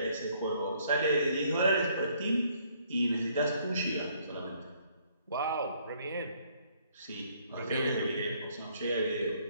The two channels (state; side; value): inverted; both; correlation -0.65